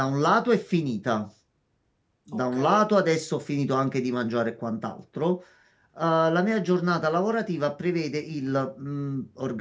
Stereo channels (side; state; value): both; identical; correlation 1.00